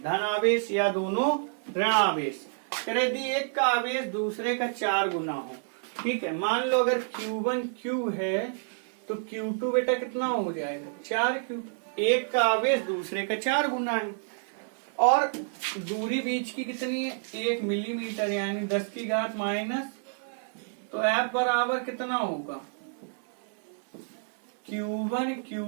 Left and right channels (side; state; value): left; silent; digital silence